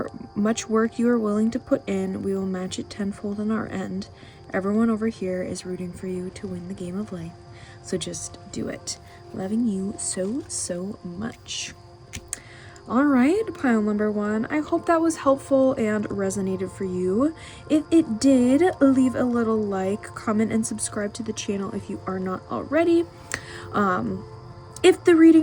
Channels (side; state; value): both; identical; correlation 1.00